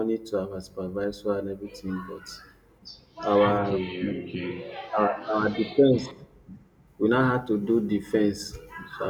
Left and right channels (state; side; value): identical; both; correlation 1.00